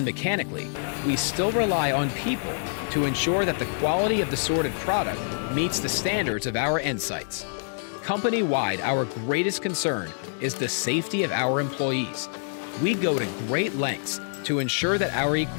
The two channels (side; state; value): right; silent; digital silence